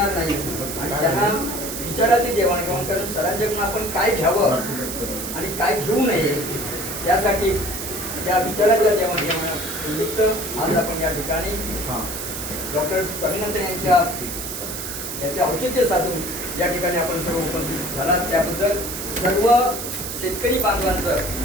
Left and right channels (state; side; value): noise; right; hiss, 6 dB below the sound